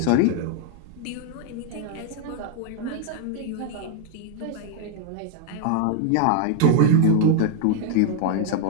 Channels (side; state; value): both; different; correlation 0.01